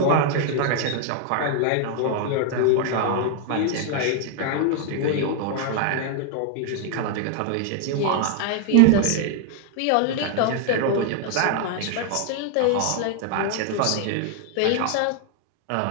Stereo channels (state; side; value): different; both; correlation 0.00